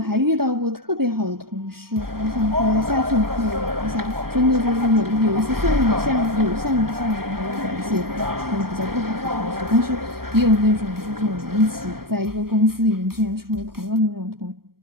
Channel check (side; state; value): left; late; 0.94 ms